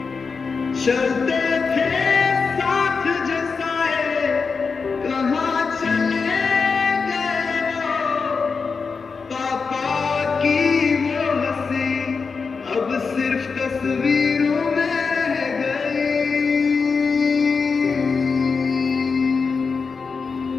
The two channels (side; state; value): right; quieter; 5.0 dB